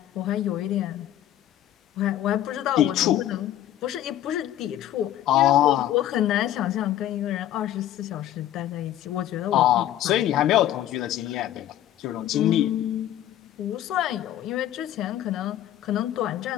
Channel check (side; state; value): right; quieter; 12.4 dB